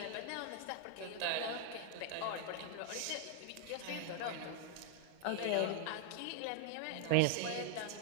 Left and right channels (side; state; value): both; different; correlation 0.00